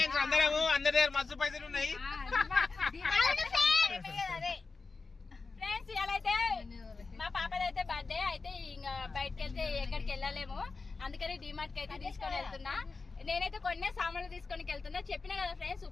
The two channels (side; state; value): right; quieter; 4.2 dB